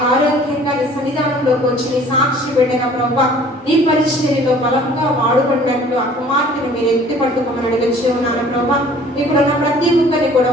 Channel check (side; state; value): both; normal; correlation 0.51